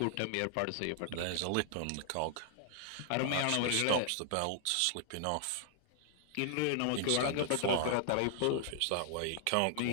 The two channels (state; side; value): different; both; correlation 0.00